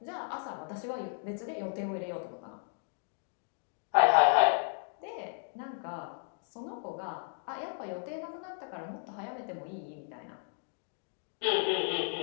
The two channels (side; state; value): right; silent; 55 dB below the other